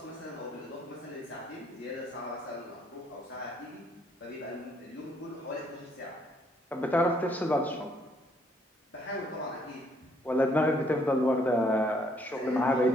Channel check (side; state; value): both; normal; correlation 0.67